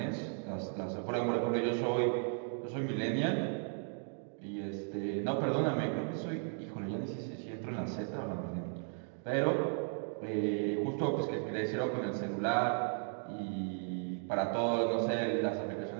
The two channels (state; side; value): silent; left; 54 dB below the other